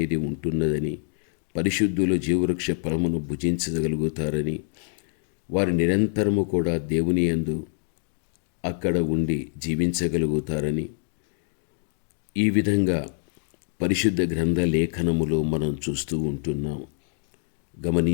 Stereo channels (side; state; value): right; silent; 61 dB below the other